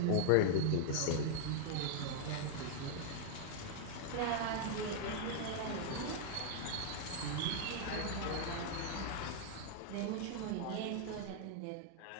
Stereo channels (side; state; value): both; different; correlation 0.00